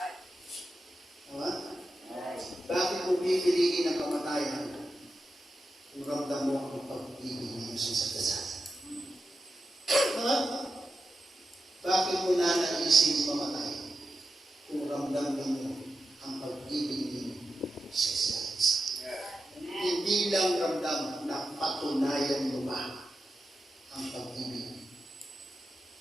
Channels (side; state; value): both; normal; correlation 0.89